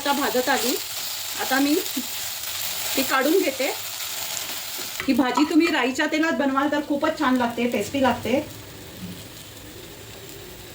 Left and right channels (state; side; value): identical; both; correlation 1.00